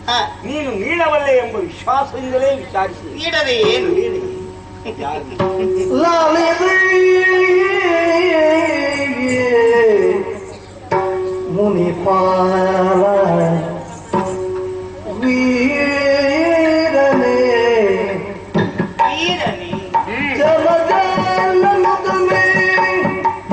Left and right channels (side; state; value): both; identical; correlation 1.00